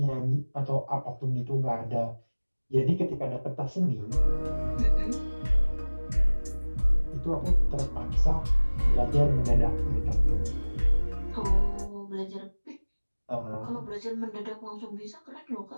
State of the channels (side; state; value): both; inverted; correlation -1.00